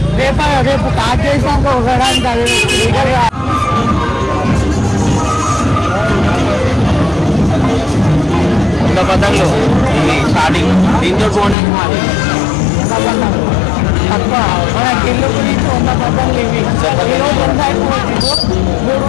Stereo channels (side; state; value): right; drops out; at 11.6 s